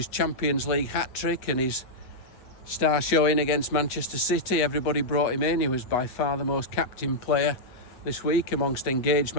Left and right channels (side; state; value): right; late; 8.1 ms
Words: Champions League hat-trick and his star showing against Manchester City. Everybody brought him in. He was by far the most captain player this week amongst engaged